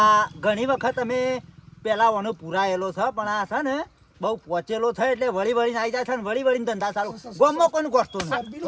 ઘણી વખત અમે પેલા ઓનો પુરાયેલો છે પણ આ છે ને બહુ પહોંચેલો છે એટલે વળી વળીને આવી જાય છે ને વળી વળીને ધંધા ચાલુ ગોમમાં કોઈને ગોઠતો નહીં.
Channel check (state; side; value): identical; both; correlation 1.00